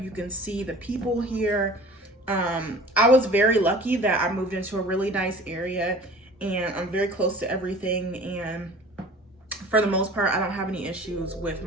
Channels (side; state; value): both; normal; correlation 0.43